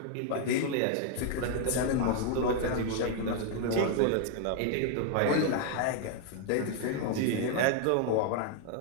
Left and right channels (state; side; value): different; both; correlation 0.00